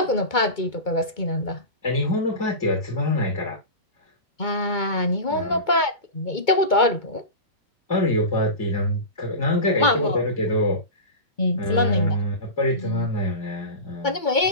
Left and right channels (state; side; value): late; right; 2.2 ms